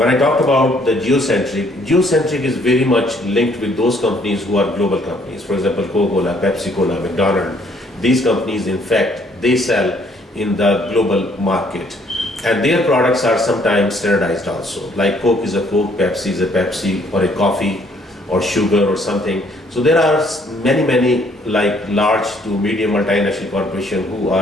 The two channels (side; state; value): both; normal; correlation 0.64